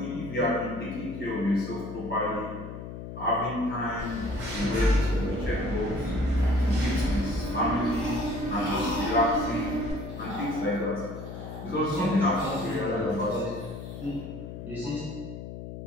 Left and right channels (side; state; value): left; noise; hum, 9 dB below the sound